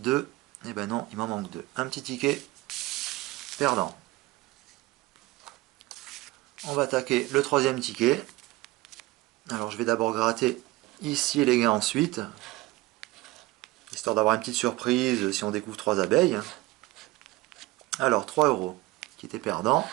Eh ben non, il m'en manque 2. Un petit ticket perdant. On va attaquer le 3e ticket. Alors, je vais d'abord gratter ici les gains ensuite. Histoire d'avoir une petite surprise si on découvre 3 abeilles. Alors, 3 euros qui était perdant.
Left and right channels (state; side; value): quieter; left; 20.0 dB